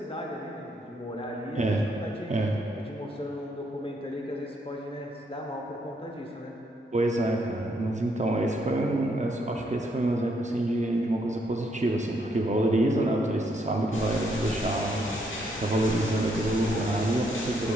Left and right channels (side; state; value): both; normal; correlation 0.73